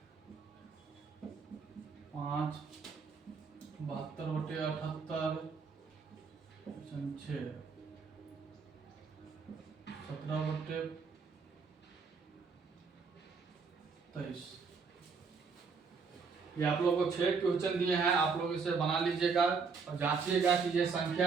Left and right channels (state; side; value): quieter; left; 5.2 dB